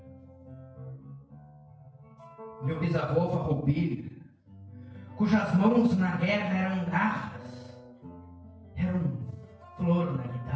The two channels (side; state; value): both; identical; correlation 1.00